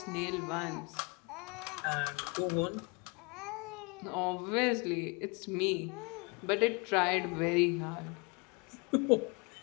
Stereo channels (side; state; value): right; quieter; 30.6 dB